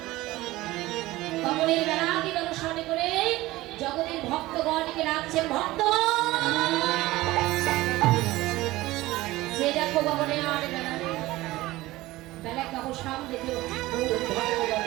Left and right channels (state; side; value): quieter; left; 18.2 dB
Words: কবরের বেলাকে দর্শন করে জগতের ভক্তগণকে রাখছেন ভক্ত সে দেখো কবরে আরে বেলা বেলা কাবো সামনে দেখো